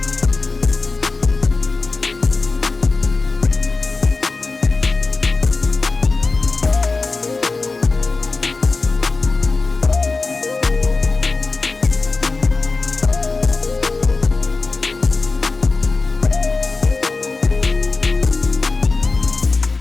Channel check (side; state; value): right; quieter; 3.8 dB